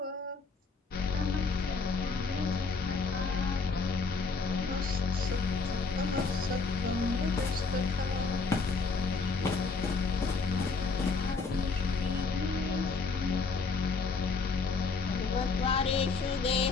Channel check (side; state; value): right; quieter; 4.4 dB